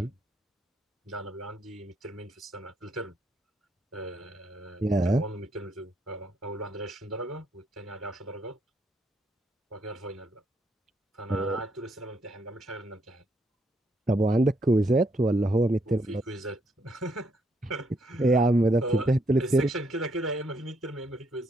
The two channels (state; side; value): normal; both; correlation 0.74